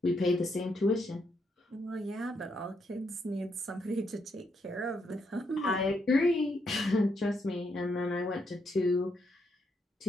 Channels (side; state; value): both; normal; correlation 0.77